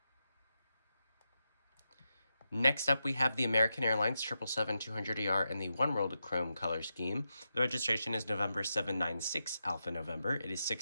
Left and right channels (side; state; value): both; inverted; correlation -0.87